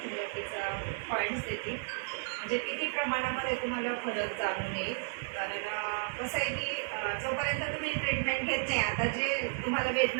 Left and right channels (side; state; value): left; silent; 56 dB below the other